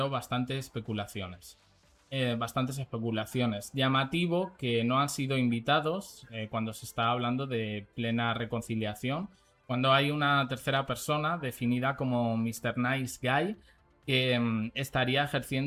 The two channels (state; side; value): identical; both; correlation 1.00